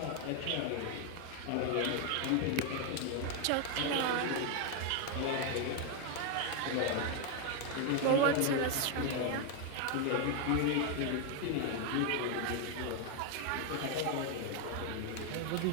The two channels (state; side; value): different; both; correlation 0.01